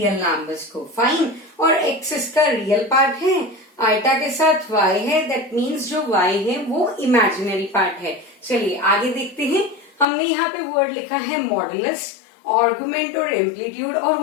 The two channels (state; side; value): drops out; right; at 10.1 s